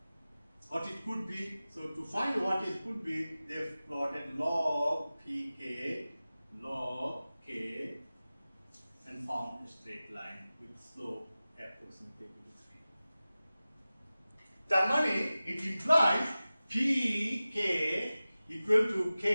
what it could be. So to find what it could be, they plotted log pk, log k, and found a straight line with slope approximately equal to 3. That means it implies pk equal to k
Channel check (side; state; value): both; inverted; correlation -0.96